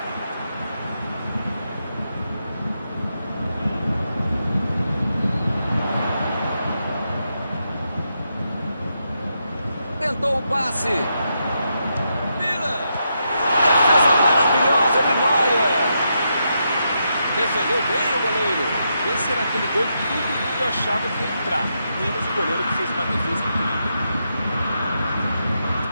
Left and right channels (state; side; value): inverted; both; correlation -0.83